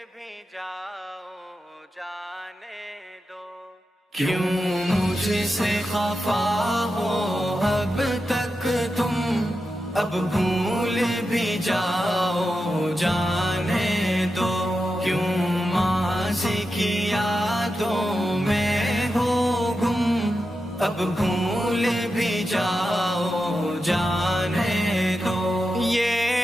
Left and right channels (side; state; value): both; normal; correlation 0.89